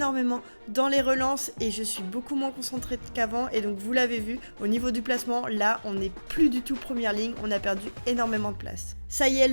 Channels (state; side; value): inverted; both; correlation -1.00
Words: dans les relances et je suis beaucoup moins concentrée qu'avant. Et donc vous l'avez vu, au niveau du placement, là on n'est plus du tout première ligne, on a perdu énormément de place. Ça y est,